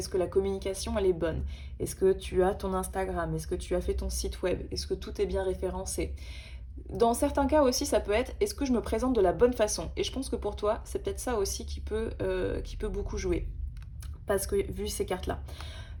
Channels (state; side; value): identical; both; correlation 1.00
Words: que la communication, elle est bonne? Est-ce que tu as ton Instagram? Est-ce que tu as fait ton site web? Est-ce que tout est bien référencé? Dans certains cas aussi, ça peut être est-ce que je me présente de la bonne façon? Et je pense que pour toi, c'est peut-être ça aussi qui peut beaucoup jouer. Parce que vu ces cartes-là.